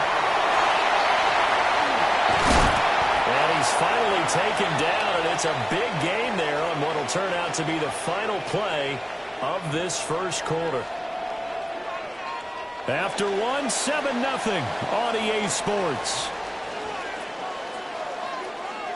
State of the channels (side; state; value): both; identical; correlation 1.00